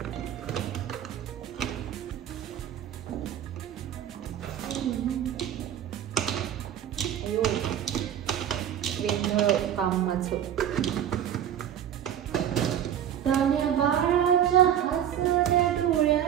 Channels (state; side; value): quieter; left; 10.1 dB